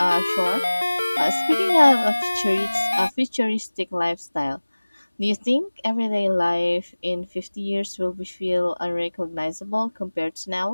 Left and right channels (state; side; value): inverted; both; correlation -1.00